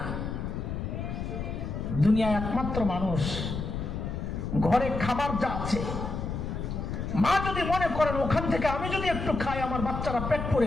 দুনিয়ায় একমাত্র মানুষ ঘরে খাবার যা আছে, মা যদি মনে করেন ওখান থেকে আমি যদি একটু খাই আমার বাচ্চারা পেট পরে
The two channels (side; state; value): left; noise; rumble, 4 dB below the sound